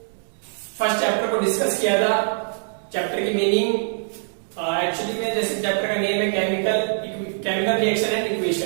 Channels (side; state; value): left; silent; digital silence